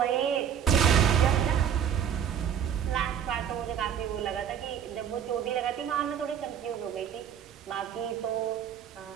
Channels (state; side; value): quieter; left; 8.8 dB